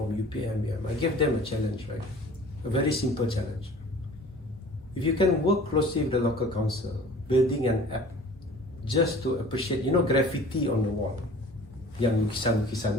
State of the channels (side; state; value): both; normal; correlation 0.46